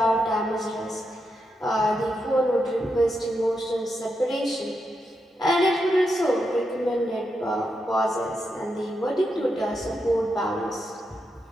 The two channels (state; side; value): normal; both; correlation 0.85